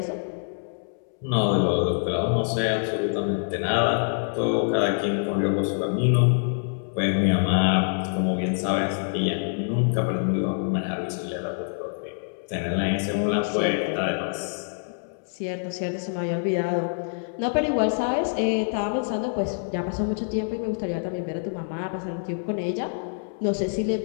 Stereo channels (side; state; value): right; silent; 61 dB below the other